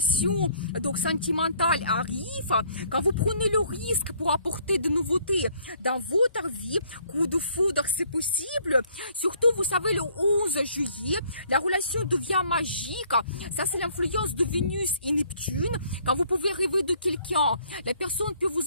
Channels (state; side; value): inverted; both; correlation -0.62